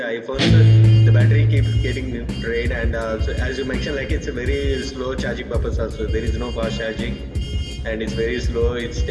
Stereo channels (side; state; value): both; identical; correlation 1.00